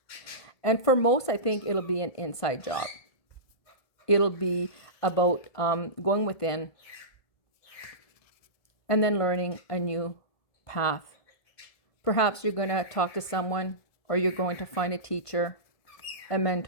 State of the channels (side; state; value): right; late; 1.5 ms